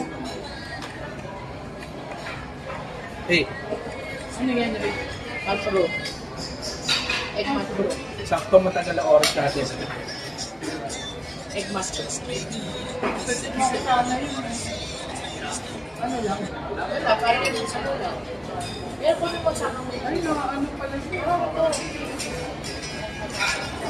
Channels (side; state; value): both; identical; correlation 1.00